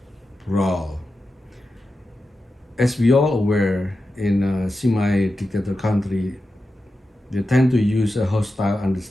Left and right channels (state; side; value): normal; both; correlation 0.91